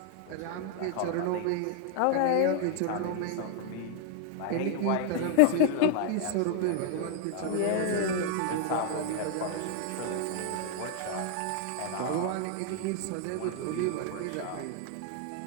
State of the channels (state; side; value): different; both; correlation 0.00